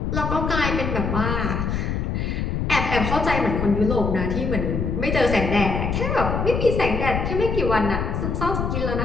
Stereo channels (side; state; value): left; noise; rumble, 1 dB below the sound